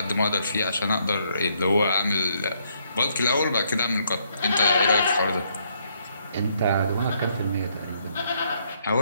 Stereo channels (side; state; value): both; inverted; correlation -0.72